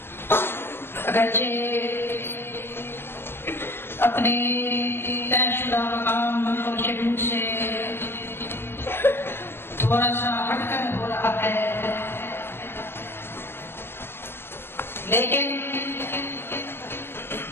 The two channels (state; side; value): late; right; 0.11 ms